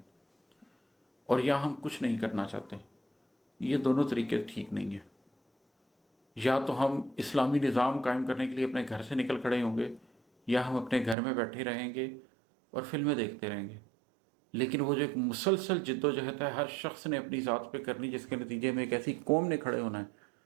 और या हम कुछ नहीं करना चाहते। ये दोनों तरीके ठीक नहीं है। या तो हम इस्लामी निज़ाम कायम करने के लिए अपने घर से निकल खड़े होंगे, या हम अपने घर में बैठे रहेंगे और फिल्में देखते रहेंगे। लेकिन वो जो एक मुसलसल जिद्दोजहद है हर शख्स ने अपनी ज़ात पे करनी, जिसके नतीजे में एक ऐसी कौम ने खड़े होना है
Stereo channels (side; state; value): left; drops out; at 11.2 s